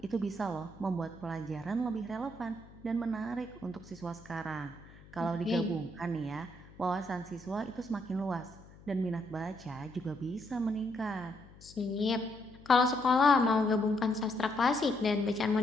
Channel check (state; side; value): noise; left; hum, 22 dB below the sound